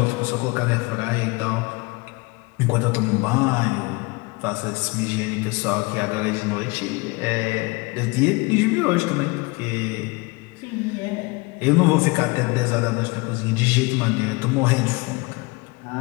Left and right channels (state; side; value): quieter; right; 25.5 dB